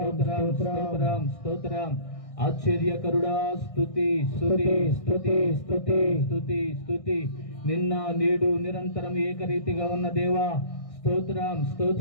స్తోత్రం స్తోత్రం ఆశ్చర్యకరుడా స్తుతి స్తుతి స్తుతి స్తుతి స్తుతి స్తుతి నిన్న నేడు నిరంతరం ఏకరీతిగా ఉన్న దేవా స్తోత్రం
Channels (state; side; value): late; right; 1.6 ms